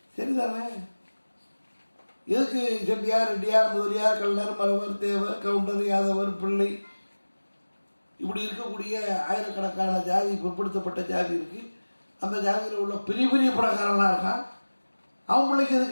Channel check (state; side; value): inverted; both; correlation -1.00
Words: சரிதானே? எதுக்கு செட்டியார், ரெட்டியார், முதலியார், கல்லர், மரவர், தேவர், கவுண்டர், யாதவர், பிள்ளை, இப்படி இருக்கக்கூடிய ஆயிரக்கணக்கான ஜாதி, பிற்படுத்தப்பட்ட ஜாதி இருக்கு. அந்த ஜாதியில் உள்ள பெரிய பெரிய பணக்காரனா இருக்கான், அவன் பிள்ளைக்கு எது